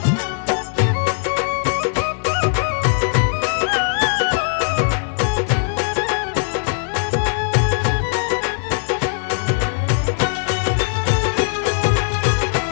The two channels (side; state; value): right; silent; digital silence